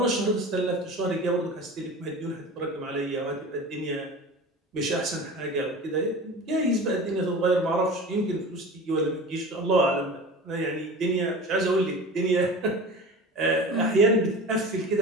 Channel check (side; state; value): both; normal; correlation 0.35